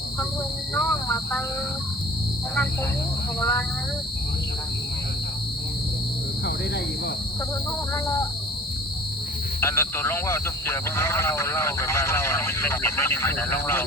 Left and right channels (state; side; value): normal; both; correlation 0.45